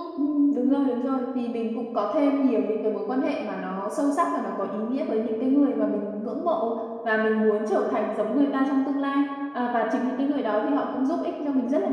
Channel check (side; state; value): both; identical; correlation 1.00